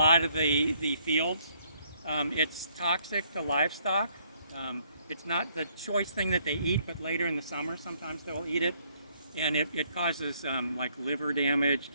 of the fields. It's toxic to livestock. It's not the choice thing that they eat, but later in the summer sometimes they'll eat it. And it causes like liver damage,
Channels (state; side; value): inverted; both; correlation -0.67